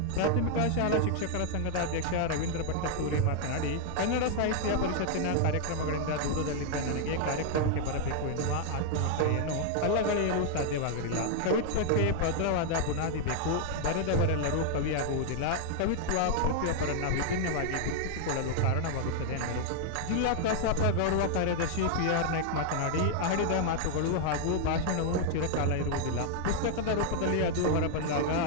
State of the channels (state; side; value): different; both; correlation 0.00